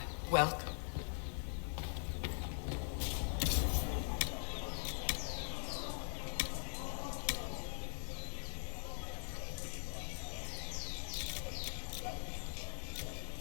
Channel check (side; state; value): right; silent; digital silence